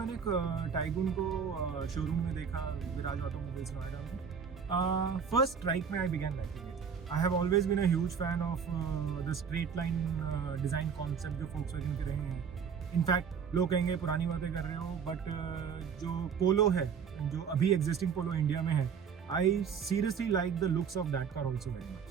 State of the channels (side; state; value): left; quieter; 6.7 dB